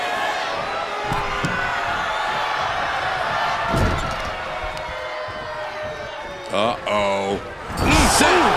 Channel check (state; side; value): identical; both; correlation 1.00